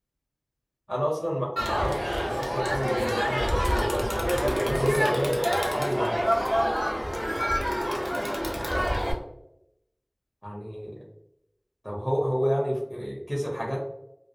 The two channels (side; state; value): both; identical; correlation 1.00